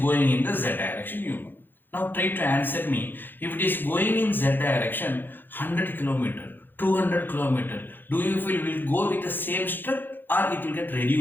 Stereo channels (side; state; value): right; late; 0.094 ms